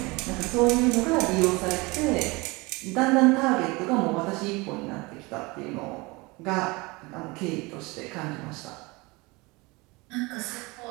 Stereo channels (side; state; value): left; quieter; 24.7 dB